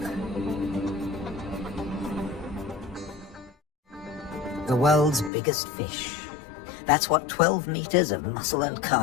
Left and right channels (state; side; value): drops out; right; at 5.3 s